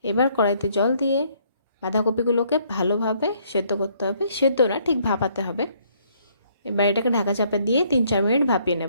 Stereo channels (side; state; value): both; inverted; correlation -0.66